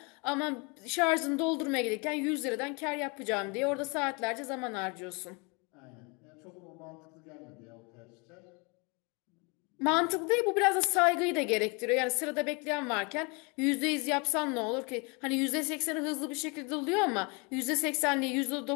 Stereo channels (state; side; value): quieter; right; 30.6 dB